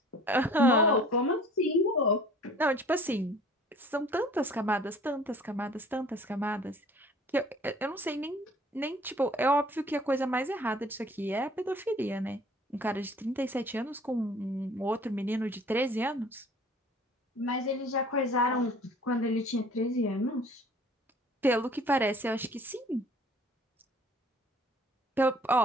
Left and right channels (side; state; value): both; normal; correlation 0.50